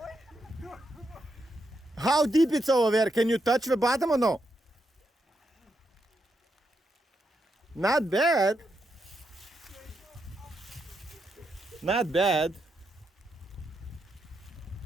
How deep it's over there? Can you touch the bottom or no? Not bad. Not bad.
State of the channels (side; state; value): both; normal; correlation 0.82